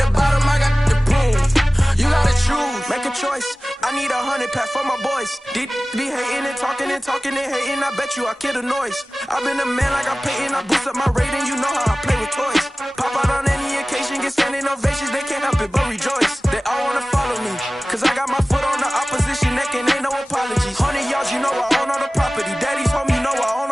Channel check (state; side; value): normal; both; correlation 0.97